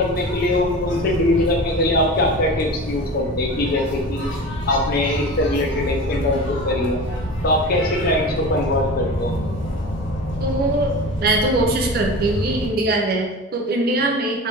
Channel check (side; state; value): both; normal; correlation 0.33